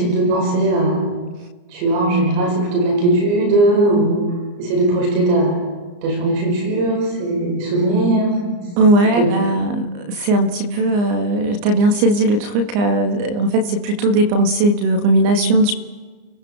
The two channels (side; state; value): left; late; 34 ms